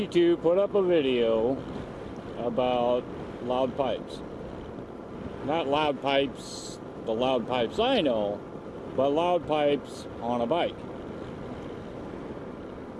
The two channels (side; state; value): both; identical; correlation 1.00